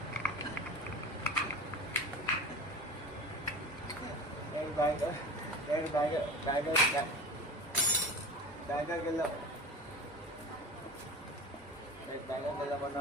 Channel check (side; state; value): both; normal; correlation 0.33